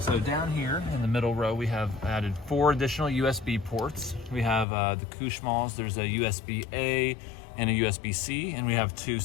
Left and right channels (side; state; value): right; drops out; at 4.7 s